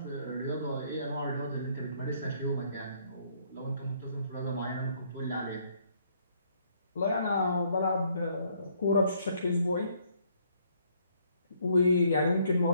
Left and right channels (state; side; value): inverted; both; correlation -0.67